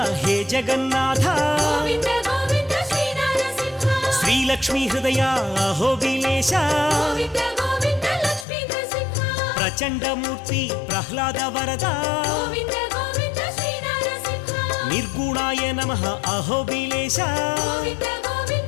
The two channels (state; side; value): drops out; right; at 8.5 s